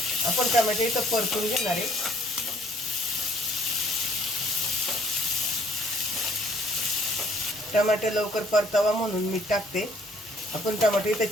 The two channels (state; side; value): normal; both; correlation 0.62